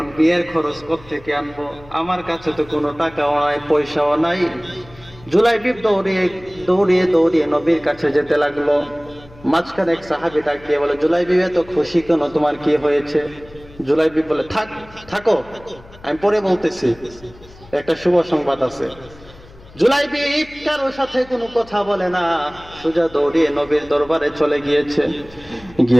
বিয়ের খরচ কোত্থেকে আনবো? আমার কাছে তো কোনো টাকাও নাই, পয়সাও নাই। জুলাইবিব দৌড়িয়ে দৌড়িয়ে দৌড়িয়ে নবীর কাছে যেতে লাগলো। মাঝখানে এক সাহাবী ডাক দিয়ে বলে, জুলাইবিব এত খুশি কেন, তোমার কি হয়েছে? জুলাইবিব বলে, থাকো আমি পরে বলতেছি, একটা শুভ সংবাদ আছে। জুলাইবিব কারোর সাথে কোনো কথা বলে না, সোজা দৌড়িয়ে নবীর দরবারে চলে গিয়েছে।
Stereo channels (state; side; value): noise; left; hum, 22 dB below the sound